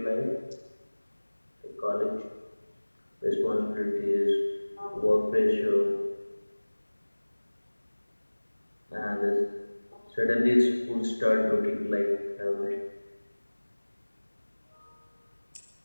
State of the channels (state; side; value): inverted; both; correlation -1.00